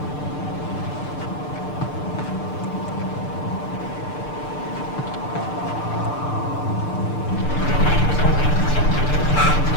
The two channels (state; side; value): late; right; 6.7 ms